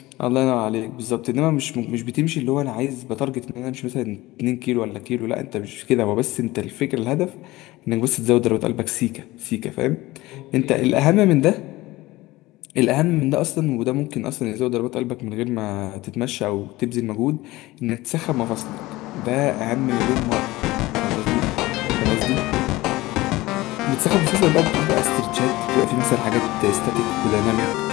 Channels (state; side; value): quieter; right; 19.0 dB